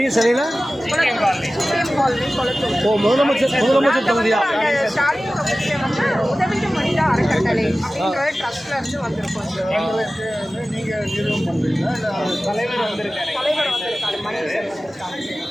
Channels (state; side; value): normal; both; correlation 0.96